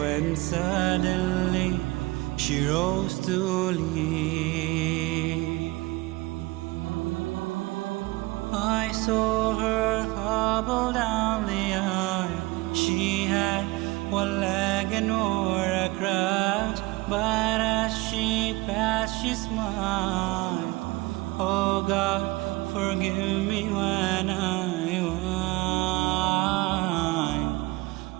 suddenly she rose to leave. I saw her hobble down the aisle. She had one leg and wore a crutch, but as she passed she smiled. Oh God, forgive me when I whine,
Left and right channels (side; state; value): left; quieter; 21.7 dB